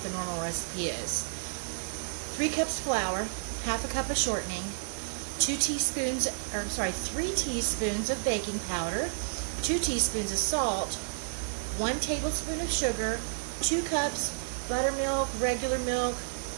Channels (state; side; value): silent; left; digital silence